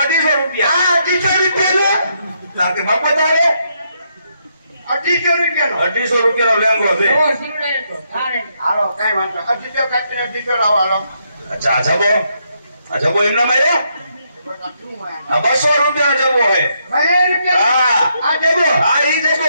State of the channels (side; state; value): both; inverted; correlation -0.77